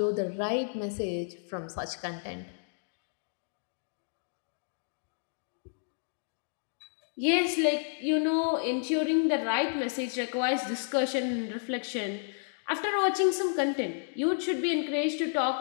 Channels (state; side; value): silent; right; digital silence